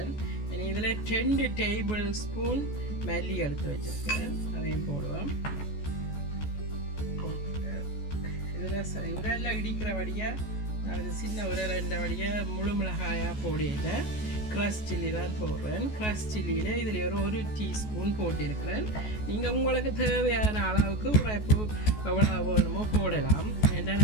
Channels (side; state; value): right; late; 14 ms